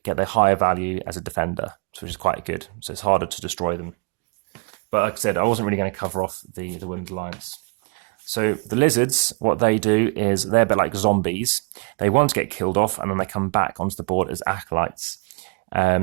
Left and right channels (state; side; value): quieter; left; 32.3 dB